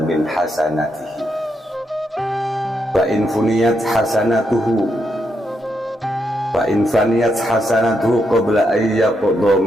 hasanatihi fa in funiyat hasanatuhu fa in faniyat hasanatuhu qabla an yaqda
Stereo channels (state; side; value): normal; both; correlation 0.81